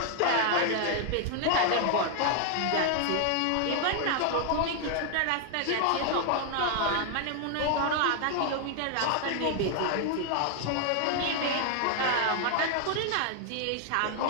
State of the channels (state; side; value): different; both; correlation 0.00